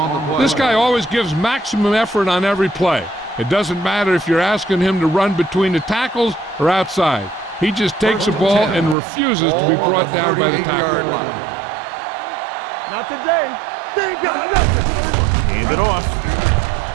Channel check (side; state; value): left; drops out; at 9.0 s